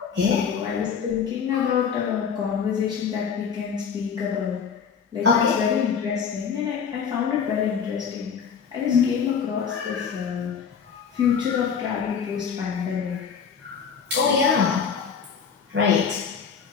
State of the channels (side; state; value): right; quieter; 6.7 dB